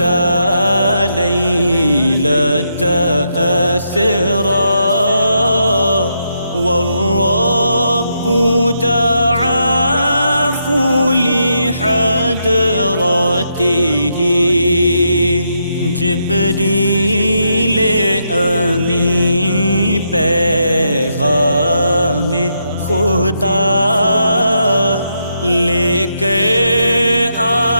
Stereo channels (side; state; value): both; inverted; correlation -0.80